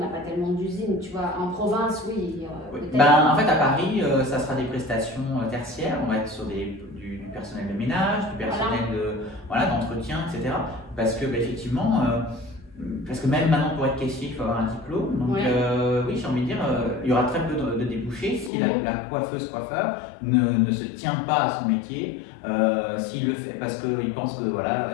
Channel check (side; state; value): right; drops out; at 18.5 s